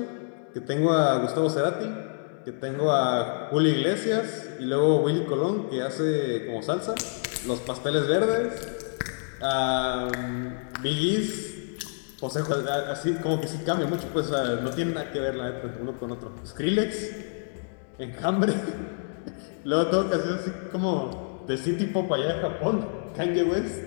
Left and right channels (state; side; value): silent; right; digital silence